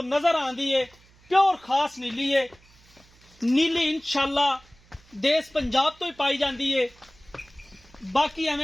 नजर आंदी है। प्योर खास नीली है। नीली इंशाअल्लाह देश पंजाब तो ही पाई जाती है। बाकी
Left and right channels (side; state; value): right; noise; hum, 29 dB below the sound